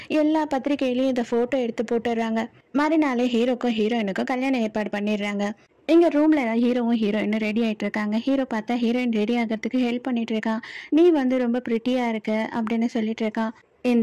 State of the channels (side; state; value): both; identical; correlation 1.00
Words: எல்லா பத்திரிகையிலையும் இந்த போட்டோ எடுத்து போட்டுடுறாங்க. மறுநாளே ஹீரோக்கும் ஹீரோயினுக்கும் கல்யாணம் ஏற்பாடு பண்ணிடுறாங்க. எங்க ரூம்ல ஹீரோவும் ஹீரோயினும் ரெடி ஆயிட்டு இருக்காங்க. ஹீரோ பார்த்தா ஹீரோயின் ரெடி ஆகிறதுக்கு ஹெல்ப் பண்ணிட்டு இருக்கான். நீ வந்து ரொம்ப பிரிட்டியா இருக்க அப்படின்னு சொல்லிட்டு இருக்கான்.